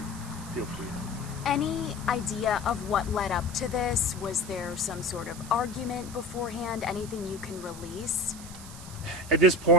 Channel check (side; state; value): right; noise; hiss, 15 dB below the sound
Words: feel free. Any idea of what led up to this? Was there some sort of argument beforehand? Anything you can release? At this